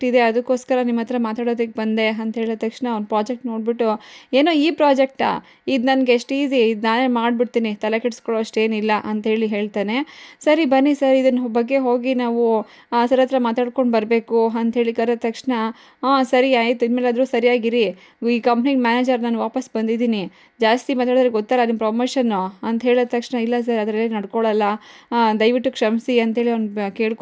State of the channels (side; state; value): both; identical; correlation 1.00